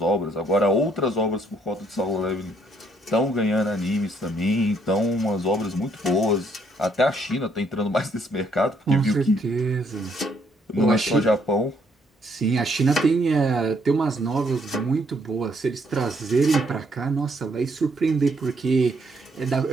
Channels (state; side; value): normal; both; correlation 0.69